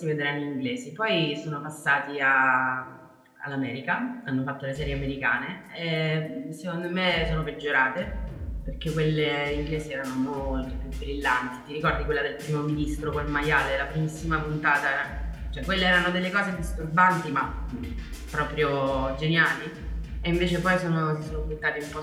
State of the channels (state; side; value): identical; both; correlation 1.00